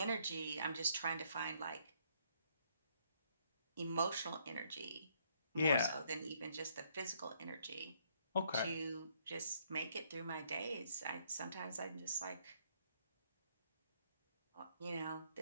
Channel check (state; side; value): inverted; both; correlation -0.69